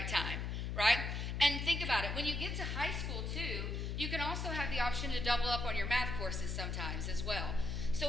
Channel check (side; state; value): left; noise; hum, 2 dB below the sound